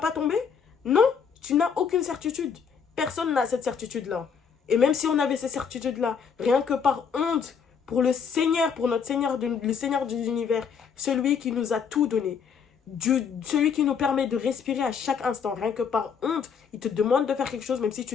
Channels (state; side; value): quieter; right; 6.6 dB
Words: tomber? Non, tu n'as aucune certitude. Personne n'a cette certitude-là. Et même si on avait ces certitudes-là, rien que par honte pour le Seigneur, pour notre Seigneur, le Seigneur des univers, celui qui nous a tout donné, celui qui nous permet de respirer à chaque instant, rien que par honte, il te demande de faire quelque chose, même si tu